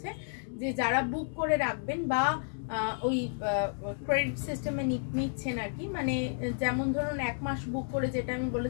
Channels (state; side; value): silent; right; digital silence